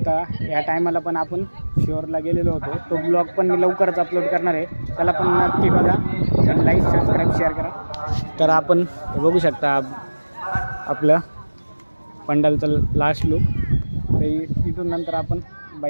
या टायमाला पण आपण शिवरला गेलेलो होतो, तो ब्लॉग पण मी लवकरच अपलोड करणार आहे. त्याला पण नक्की बघा आणि लाईक सबस्क्राईब शेअर करा. तर आपण बघू शकता आपलं पंडालचं लास्ट लुक. तर इथून नंतर आपण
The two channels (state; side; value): inverted; both; correlation -1.00